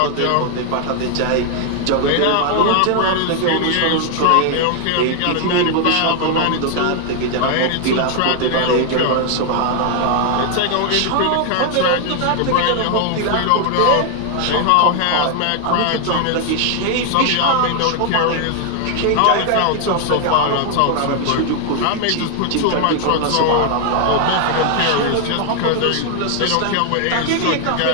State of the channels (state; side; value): different; both; correlation 0.00